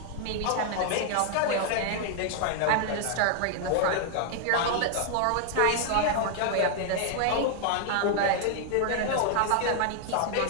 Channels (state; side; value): different; both; correlation 0.00